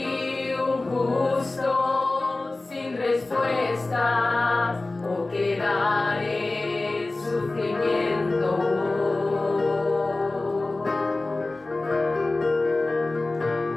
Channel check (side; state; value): right; quieter; 3.1 dB